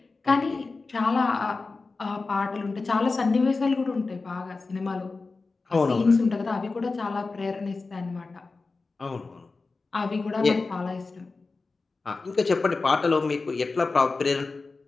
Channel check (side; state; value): right; quieter; 3.9 dB